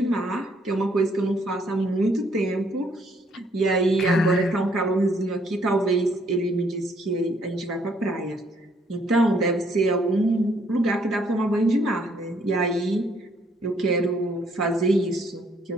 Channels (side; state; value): both; normal; correlation 0.67